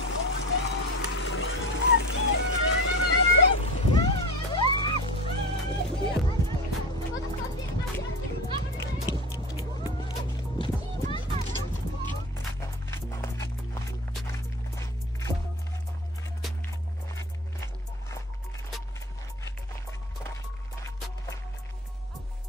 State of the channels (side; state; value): both; normal; correlation 0.30